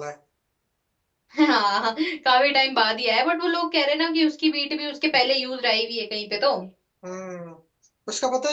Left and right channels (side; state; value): both; identical; correlation 1.00